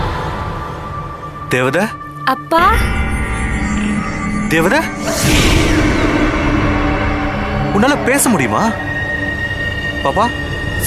தேவதா அப்பா தேவதா உன்னால பேச முடியுமா? பாப்பா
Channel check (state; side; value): identical; both; correlation 1.00